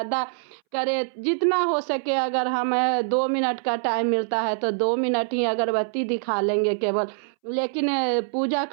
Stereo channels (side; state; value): left; silent; 62 dB below the other